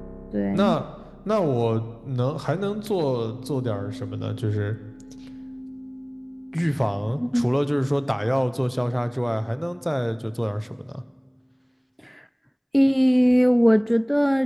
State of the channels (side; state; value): both; identical; correlation 1.00